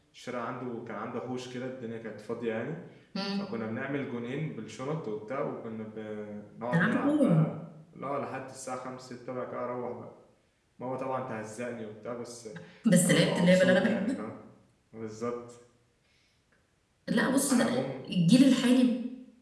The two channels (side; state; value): both; identical; correlation 1.00